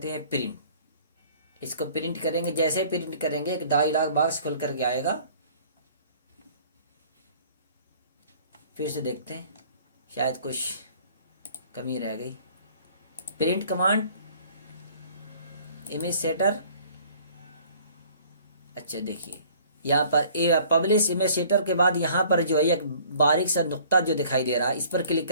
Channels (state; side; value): inverted; both; correlation -0.53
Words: हैं प्रिंट। इसको प्रिंट करेंगे, जैसे प्रिंट करेंगे एक डायलॉग बॉक्स खुल करके आएगा। फिर से देखते हैं, शायद कुछ कमी रह गई। प्रिंट कमांड इमेज सेटर, अच्छा देखिए यहाँ पर पब्लिश इमेज सेटर के बाद यहाँ पर जो है एक बारीक सा नुक्ता जो दिखाई दे रहा है, इस पर क्लिक